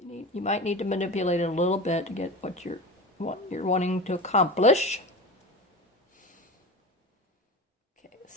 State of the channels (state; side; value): normal; both; correlation 0.29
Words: You might need to manipulate it a little bit to get what you're wanting to accomplish. Okay,